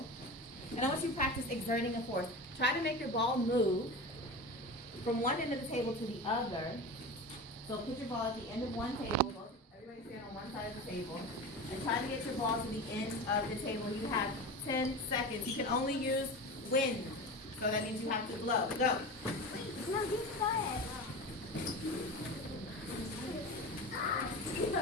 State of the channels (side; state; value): both; normal; correlation 0.28